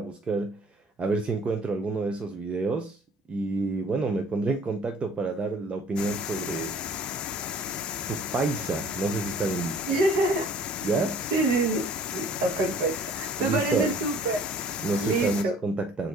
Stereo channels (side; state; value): both; normal; correlation 0.52